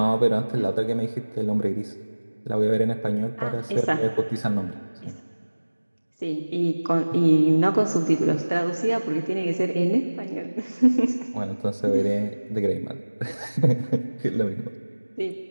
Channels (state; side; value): inverted; both; correlation -1.00